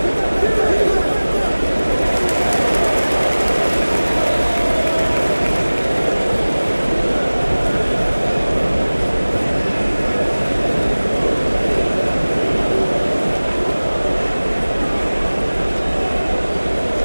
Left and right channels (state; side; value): inverted; both; correlation -1.00